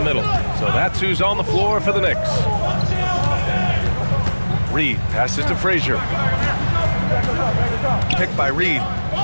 So that's who's on the floor for the Knicks. Reed passes to Frazier. Picked by Reed.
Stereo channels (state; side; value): inverted; both; correlation -1.00